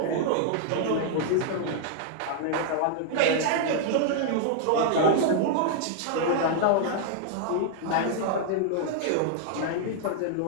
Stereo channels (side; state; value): both; different; correlation -0.01